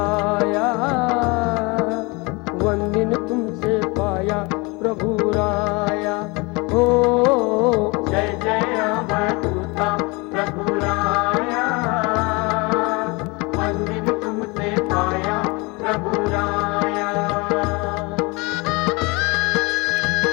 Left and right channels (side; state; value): right; quieter; 27.1 dB